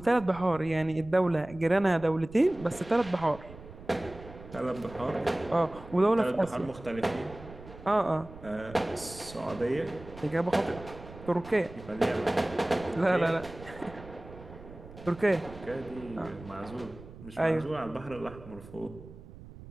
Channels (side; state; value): right; noise; rumble, 17 dB below the sound